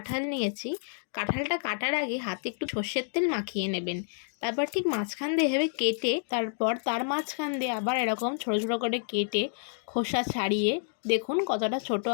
নিয়েছি। কাঁঠালটা কাটার আগে হাতে একটু সর্ষের তেল মাখিয়ে নেবেন। তারপর ঠিক মাঝখান দিয়ে এভাবে কেটে, তারপর তার মাঝখান দিয়ে আবার এরকম ছোটো ছোটো করে কেটে খোসা ছাড়িয়ে, দেখুন কতটা ছোট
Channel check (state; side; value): silent; right; digital silence